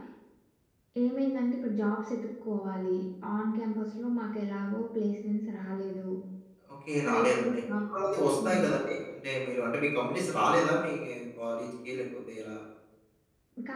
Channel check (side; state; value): both; identical; correlation 1.00